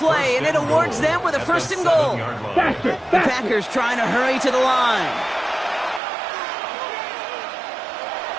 and it awards them with a 1st and goal. Faster, The faster. Packers trying to hurry to the line.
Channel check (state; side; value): drops out; left; at 6.0 s